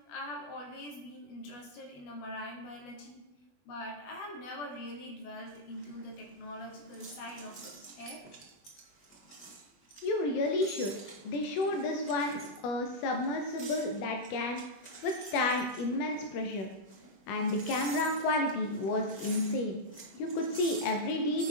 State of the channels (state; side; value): late; right; 20 ms